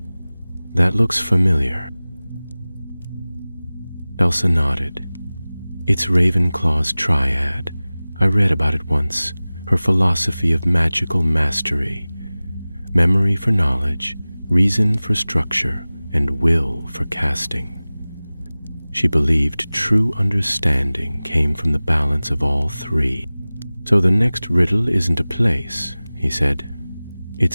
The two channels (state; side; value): inverted; both; correlation -0.99